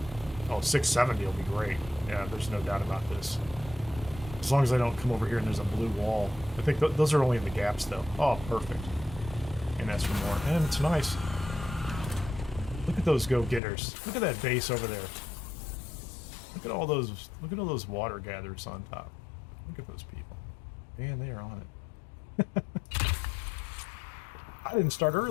Oh, 670 will be great. Yeah, there's no doubt about this. As long as I don't come over here and there's a blue wall. I think those are only in the gaps, though. Oh, perfect. And ask for more. And it's nice. Look at those go-getters. Look at that base over there. Look at all those water gatherers on top. Look at those people. Man, they are on it. I didn't start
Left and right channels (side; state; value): right; drops out; at 13.6 s